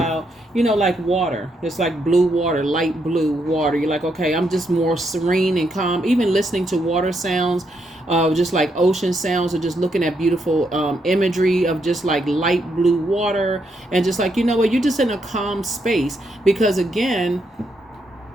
like water, it's like blue water, light blue water, you're like, okay, I'm just more serene and calm. Even listening to water sounds, just like ocean sounds, or just looking at beautiful imagery of just like light blue water, and just like, you're just in a calm space. Because again,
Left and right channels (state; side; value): normal; both; correlation 0.78